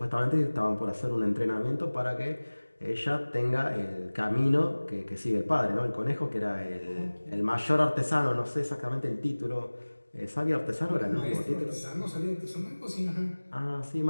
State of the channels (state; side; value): inverted; both; correlation -1.00